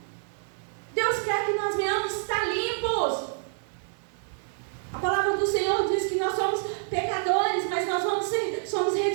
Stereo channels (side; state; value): left; silent; digital silence